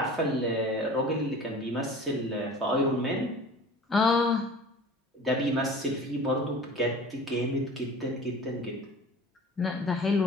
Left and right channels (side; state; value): both; normal; correlation 0.41